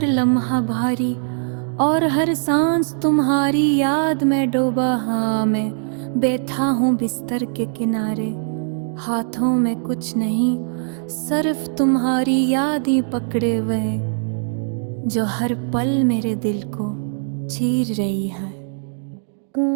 लम्हा भारी और हर सांस तुम्हारी याद में डूबा। हाँ, मैं बैठा हूँ बिस्तर के किनारे, हाथों में कुछ नहीं, सिर्फ तुम्हारी याद ही पकड़े हुए जो हर पल मेरे दिल को चीर रही है।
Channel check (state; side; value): silent; left; digital silence